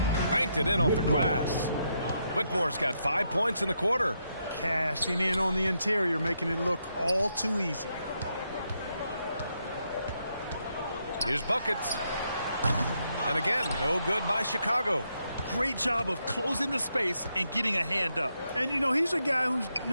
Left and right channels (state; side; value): inverted; both; correlation -0.80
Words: Banked it in off the glass. Whitmore's got 5 points in the quarter. Cashing in on the interior, making it look all too easy. Here's buckets. And again, no good by Chicago. Great job of closing the space and getting a hand up. And, you know, he's a guy who